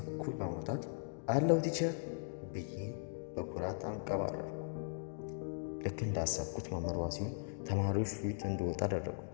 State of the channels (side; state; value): right; silent; digital silence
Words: እኩል በማውጣት አለው ቲቸር ብዬ በኩራት አንቀባረርኩ። ልክ እንዳሰብኩት መምህሯ ሲሆን ተማሪዎች ፊት እንድወጣ አደረጉ።